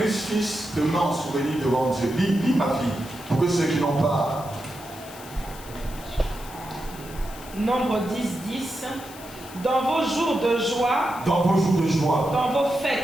te met en souvenir devant Dieu. Lis ma fille, pour que ceux qui n'ont pas. Nombre 10. Dans vos jours de joie, dans vos jours de joie, dans vos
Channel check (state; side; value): noise; left; hiss, 17 dB below the sound